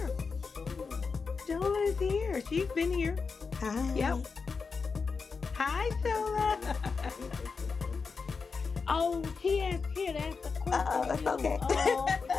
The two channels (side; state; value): right; quieter; 4.9 dB